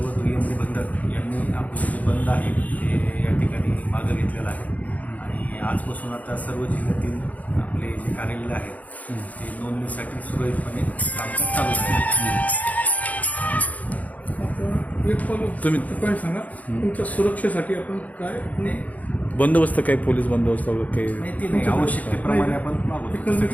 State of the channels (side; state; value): right; late; 0.074 ms